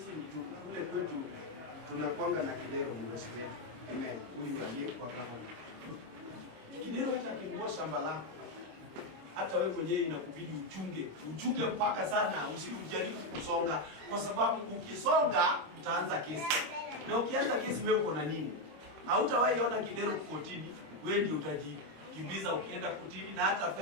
kule kwetu tunakuanga na Kidero mdosi wetu. Amen. Huyu aliyekuwa gavana. Kidero hata akinunua shamba lako, hata wewe mwenyewe inakubidi uchunge mpaka sana, usijaribu kusonga, kwa sababu ukisonga utaanza kesi. Na ukianza kesi wewe uko na nini? Hautawahi ona Kidero kotini, wewe ndio utajikimbiza ukienda kotini, na hata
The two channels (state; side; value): late; left; 25 ms